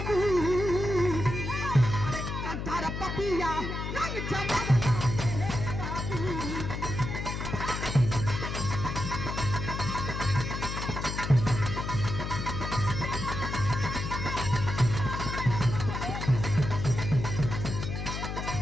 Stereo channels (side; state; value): left; noise; hum, 4 dB below the sound